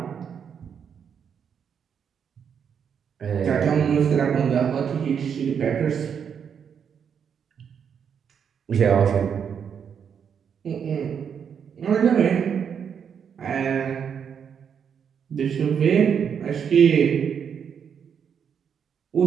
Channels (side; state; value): left; quieter; 7.5 dB